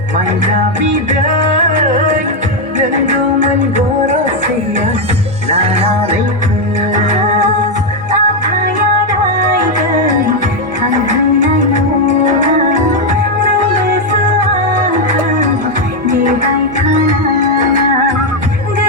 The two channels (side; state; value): both; normal; correlation 0.03